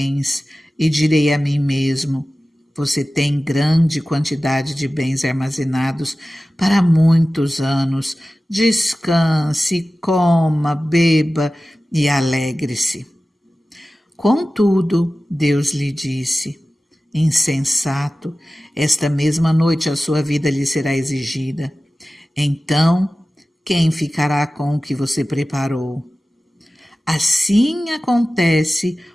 e direi a mim mesmo: você tem grande quantidade de bens armazenados para muitos anos. Descanse, coma, beba e alegre-se. Contudo, Deus lhe disse: insensato, esta mesma noite a sua vida lhe será exigida. Então, quem ficará com o que você preparou? Assim acontece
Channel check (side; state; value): both; normal; correlation 0.96